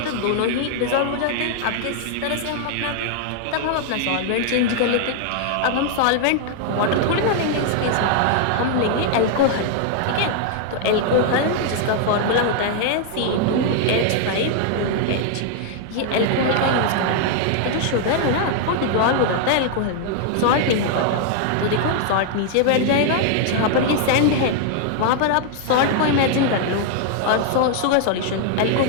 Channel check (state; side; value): different; both; correlation 0.00